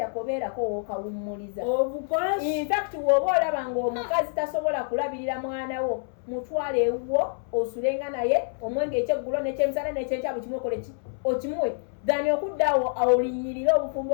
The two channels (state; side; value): silent; right; 60 dB below the other